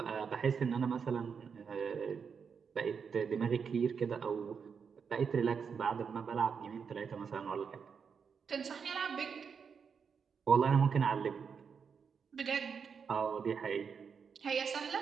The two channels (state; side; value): quieter; left; 6.3 dB